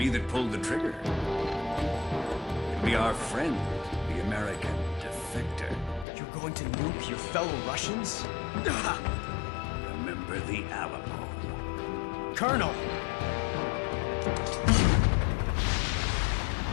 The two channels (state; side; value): drops out; right; at 6.1 s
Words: that pulled the trigger. It'll be our friend, the American defector. You're going to nuke your fellow Russians? Remember the Alamo. Colonel!